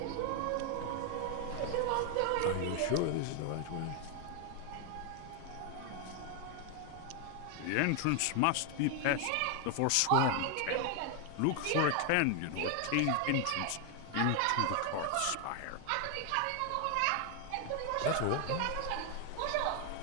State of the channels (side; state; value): both; different; correlation 0.01